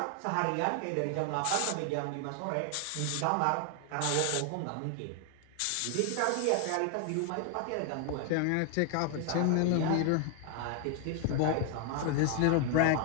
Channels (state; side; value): different; both; correlation 0.00